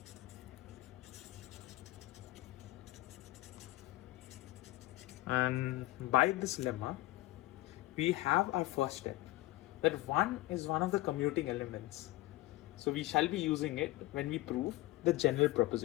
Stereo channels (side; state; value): right; quieter; 18.2 dB